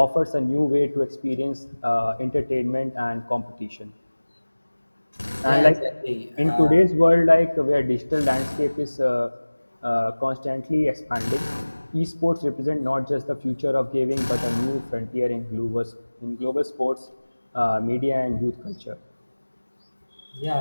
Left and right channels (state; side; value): inverted; both; correlation -1.00